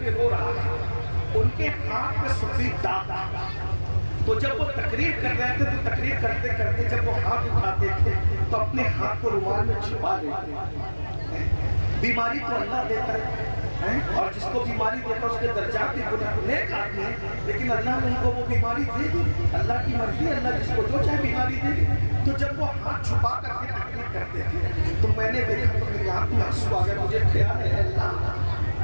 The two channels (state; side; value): inverted; both; correlation -1.00